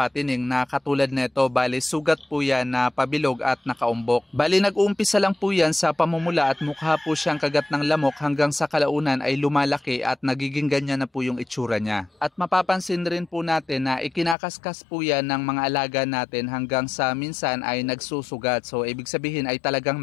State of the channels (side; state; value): right; drops out; at 14.4 s